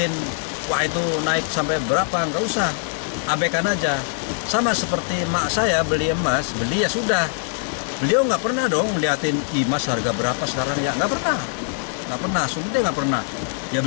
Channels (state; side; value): silent; right; 56 dB below the other